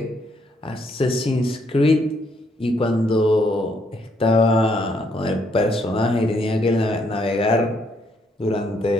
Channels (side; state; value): both; normal; correlation 0.71